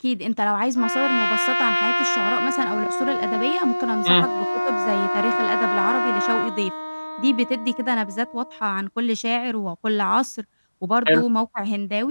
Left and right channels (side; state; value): both; inverted; correlation -1.00